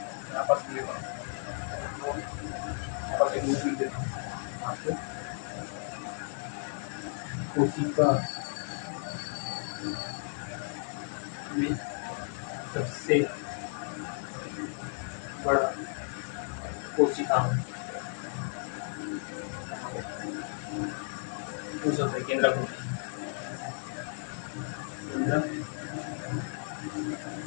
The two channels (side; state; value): right; silent; 55 dB below the other